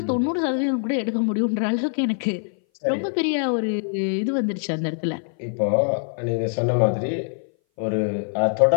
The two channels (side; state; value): right; silent; 59 dB below the other